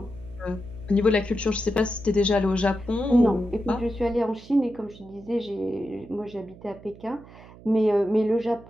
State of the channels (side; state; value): right; noise; hum, 20 dB below the sound